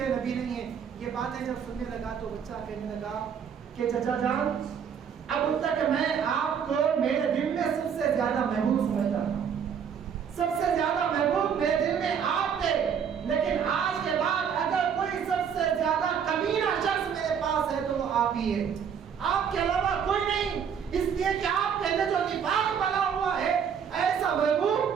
نبی نہیں ہے. یہ باتیں جب سننے لگا تو بچہ کہنے لگا کہ چچا جان، اب تک میں آپ کو میرے دل میں سب سے زیادہ محبوب سمجھتا تھا، سب سے زیادہ محبوب میرے دل میں آپ تھے، لیکن آج کے بعد اگر کوئی سب سے زیادہ کمینہ شخص میرے پاس ہے تو وہ آپ ہی ہے، آپ کے علاوہ کوئی نہیں. اس لیے کہ آپ کے اندر جو نفاق بنا ہوا ہے، ایسا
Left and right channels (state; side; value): quieter; left; 7.5 dB